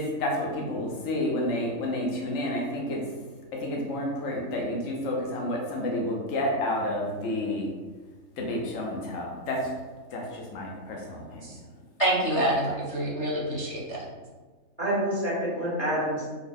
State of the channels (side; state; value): right; late; 3.3 ms